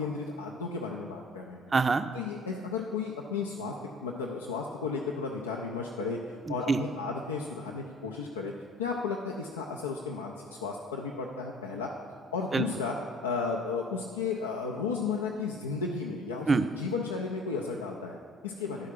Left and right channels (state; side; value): normal; both; correlation 0.44